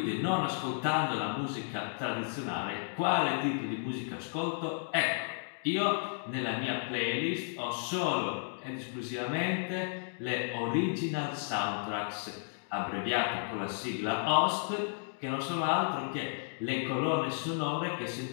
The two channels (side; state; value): right; silent; digital silence